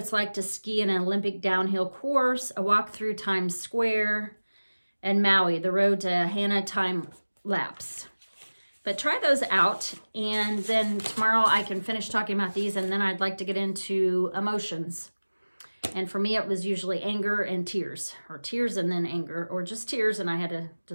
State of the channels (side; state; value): both; inverted; correlation -1.00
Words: like to ski in an Olympic downhill course, a walk through Times Square, and Maui, the road to Hana time lapse. But try those out, and then tomorrow I can finish talking about these, and then I'd like to get into emotions. And for me, it was usually anger and tears, or tears and then anger, or just tears, and I had to